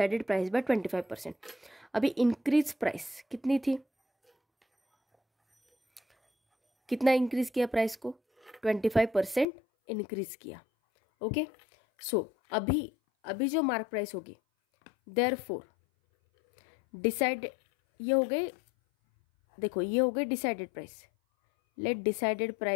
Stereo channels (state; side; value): drops out; right; at 9.5 s